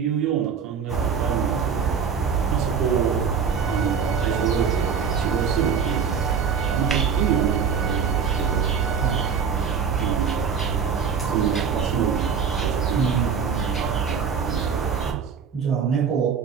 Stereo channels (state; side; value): quieter; left; 6.5 dB